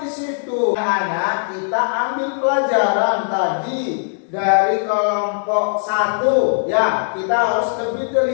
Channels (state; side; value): silent; right; digital silence